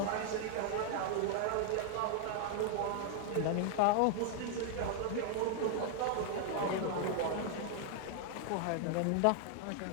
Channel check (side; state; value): both; different; correlation 0.00